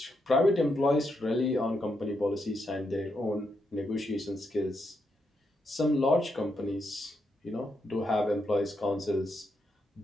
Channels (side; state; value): both; normal; correlation 0.81